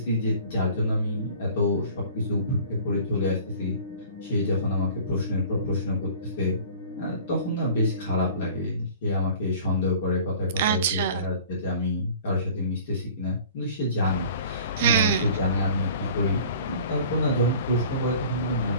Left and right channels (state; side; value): inverted; both; correlation -0.46